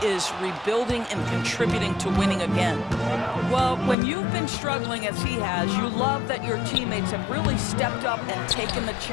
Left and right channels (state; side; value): drops out; right; at 4.0 s